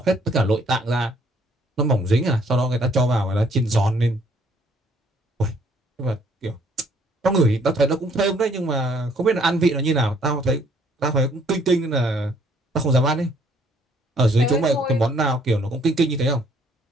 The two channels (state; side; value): normal; both; correlation 0.63